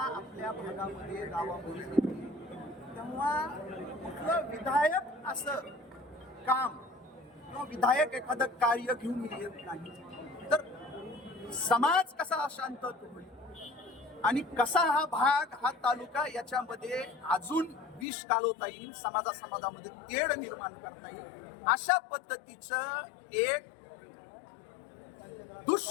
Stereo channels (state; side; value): drops out; right; at 18.1 s